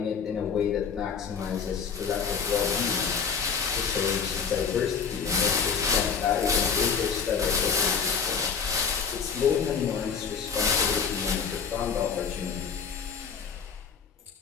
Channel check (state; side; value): quieter; right; 6.2 dB